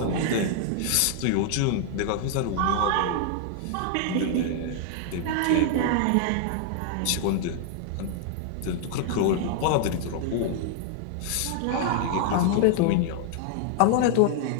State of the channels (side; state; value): both; different; correlation 0.00